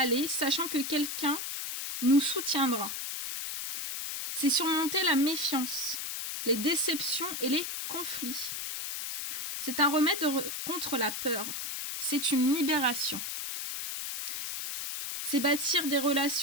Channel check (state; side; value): noise; left; hiss, 5 dB below the sound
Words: sachant que quelqu'un nous soutiendra. C'est surmonter la méfiance, les déceptions et les conflits. C'est un remède contre la peur. C'est une libération. C'est bâtir des